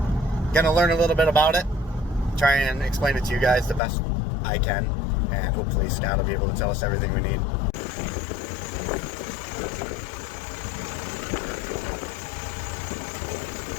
going to learn a little bit about it. Try and explain it to you guys the best I can, and hopefully Scott will be able to tell us everything we need.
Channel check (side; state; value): right; drops out; at 3.8 s